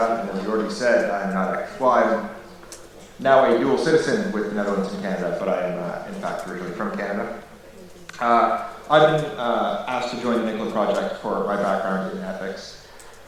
And as Jordi said, I'm now a dual citizen with the Netherlands and Canada, but I am in fact originally from Canada. I've been asked to join the NICCoLLa project for my background in ethics.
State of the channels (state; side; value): identical; both; correlation 1.00